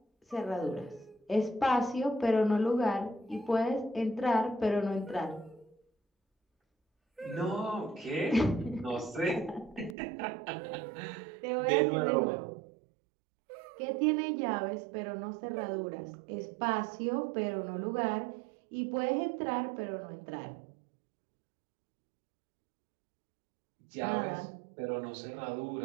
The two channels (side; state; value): left; drops out; at 10.0 s